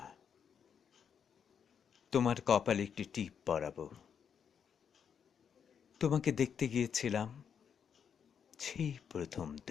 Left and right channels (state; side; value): quieter; right; 7.5 dB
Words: তোমার কপালে একটি টিপ পরাবো। তোমাকে দেখতে গিয়েছিলাম, সেই প্রথম